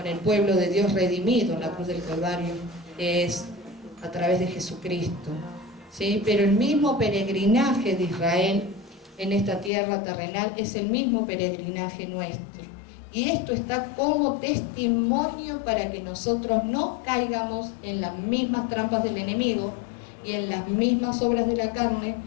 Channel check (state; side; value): drops out; right; at 9.7 s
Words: el pueblo de Dios redimido en la cruz del Calvario, que es a través de Jesucristo. ¿Sí? Pero el mismo peregrinaje de Israel en esta tierra terrenal es el mismo peregrinaje nuestro. Y esto está como testimonio para que nosotros no caigamos en las mismas trampas del enemigo y en las mismas obras de la carne